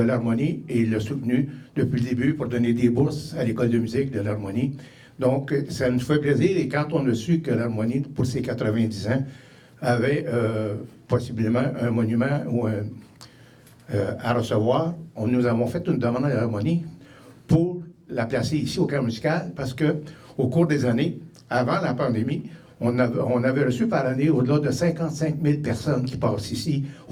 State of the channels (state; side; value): identical; both; correlation 1.00